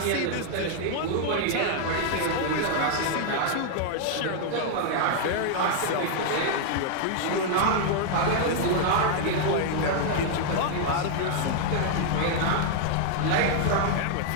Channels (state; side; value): different; both; correlation 0.00